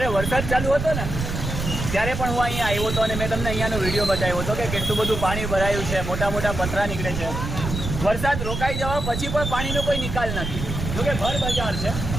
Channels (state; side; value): noise; right; rumble, 4 dB below the sound